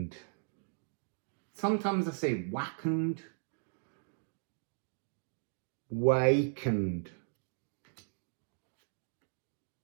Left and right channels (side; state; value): left; silent; digital silence